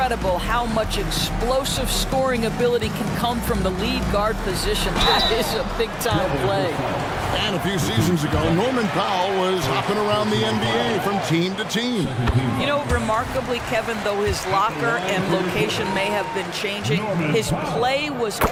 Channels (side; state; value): both; identical; correlation 1.00